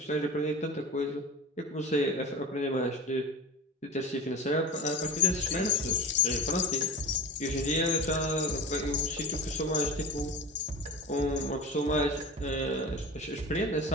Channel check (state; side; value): normal; both; correlation 0.30